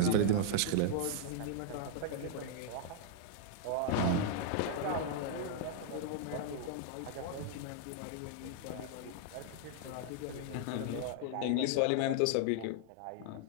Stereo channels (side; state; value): both; different; correlation -0.01